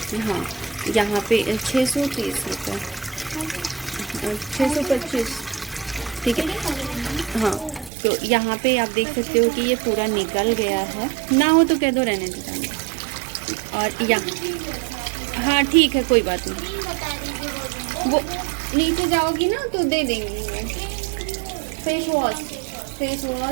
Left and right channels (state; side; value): drops out; left; at 7.9 s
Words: हाँ, यहाँ पे 630 रुपये, 625, ठीक है। हाँ, तो यहाँ पे आप देख सकते हो कि ये पूरा निकल गया है, ना हो तो कह दो रहने दीजिए। और यहाँ, हाँ ठीक है, कोई बात नहीं, वो नीचे जाओगी ना तो दे देंगी वो। फेस